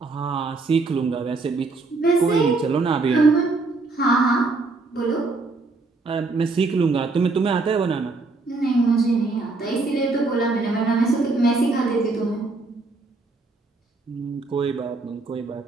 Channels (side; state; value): left; quieter; 3.6 dB